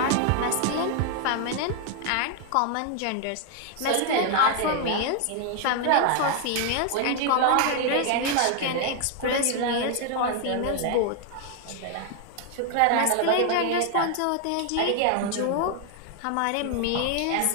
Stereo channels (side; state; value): both; different; correlation 0.00